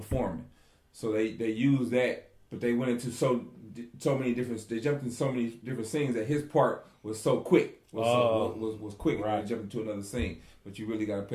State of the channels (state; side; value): identical; both; correlation 1.00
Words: so they used that, but they went into so many different. They jumped into so many different scenes that his part was so quick. Was quick. Right. When they jumped into another scene, but you really got to